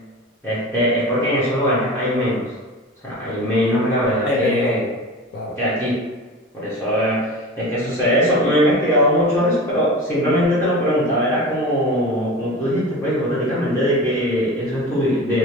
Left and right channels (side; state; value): both; normal; correlation 0.32